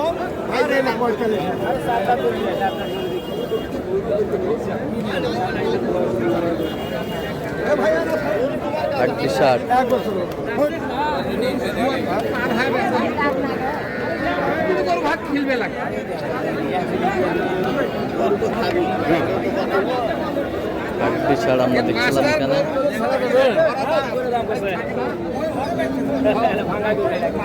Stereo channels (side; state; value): both; identical; correlation 1.00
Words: আটত্রিশ ষাট। আটত্রিশ ষাট আমরা দেখছিলাম এখানে।